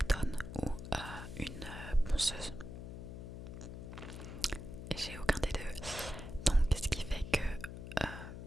ou une ponceuse. Et j'ai aucun des deux. Donc ce qui fait que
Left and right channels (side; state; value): left; noise; hum, 9 dB below the sound